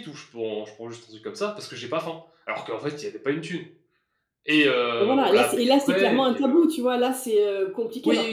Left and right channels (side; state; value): both; identical; correlation 1.00